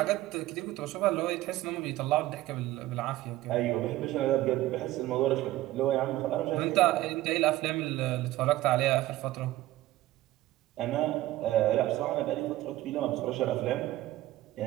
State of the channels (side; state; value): left; quieter; 16.0 dB